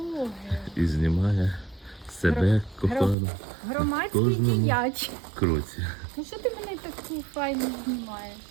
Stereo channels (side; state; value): left; drops out; at 3.2 s